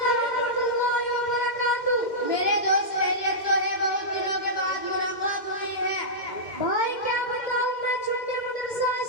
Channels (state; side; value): late; right; 2.1 ms